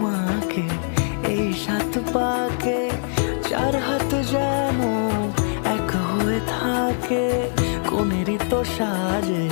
এই 7 পাকে, 4 হাত যেন এক হয়ে থাকে, কোনেরই তো সাজে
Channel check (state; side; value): silent; right; 59 dB below the other